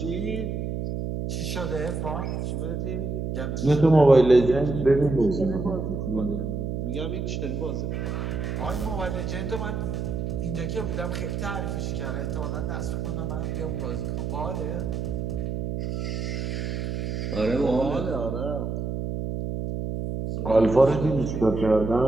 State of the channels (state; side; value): noise; right; hum, 3 dB below the sound